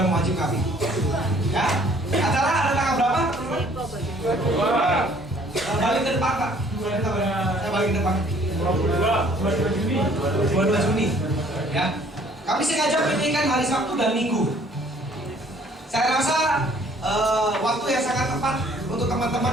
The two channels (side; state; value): both; normal; correlation 0.58